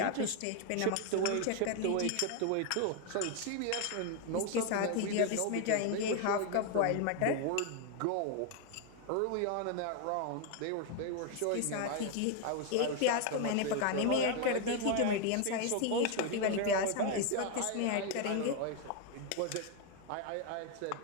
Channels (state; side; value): different; both; correlation 0.01